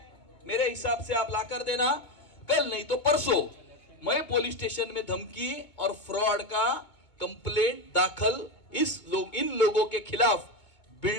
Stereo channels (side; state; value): right; late; 2.2 ms